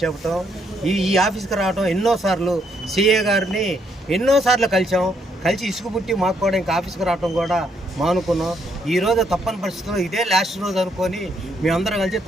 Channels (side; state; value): both; normal; correlation 0.72